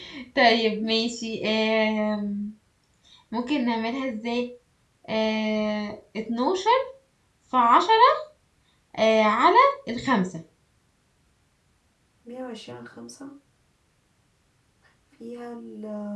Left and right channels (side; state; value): both; identical; correlation 1.00